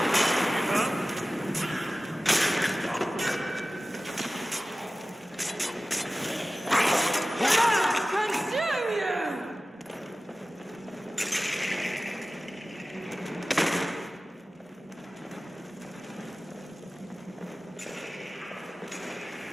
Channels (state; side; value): normal; both; correlation 0.97